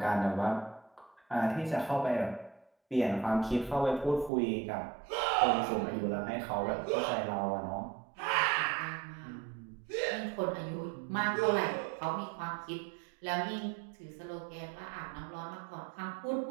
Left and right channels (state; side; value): drops out; left; at 4.3 s